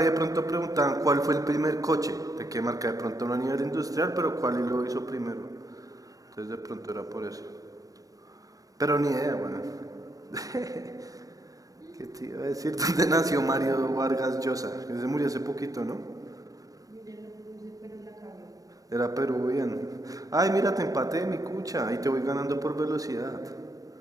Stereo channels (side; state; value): left; late; 0.17 ms